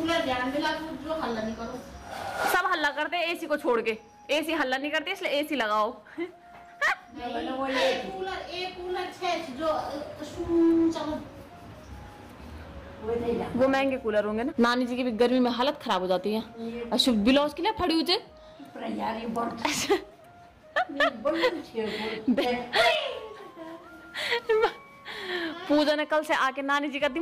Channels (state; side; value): identical; both; correlation 1.00